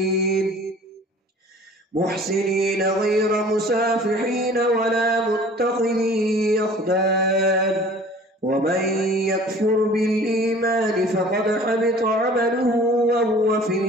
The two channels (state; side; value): normal; both; correlation 0.47